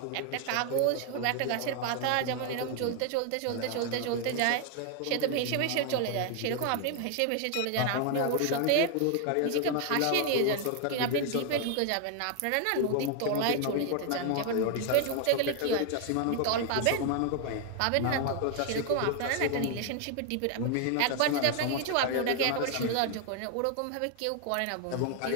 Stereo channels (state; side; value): different; both; correlation 0.00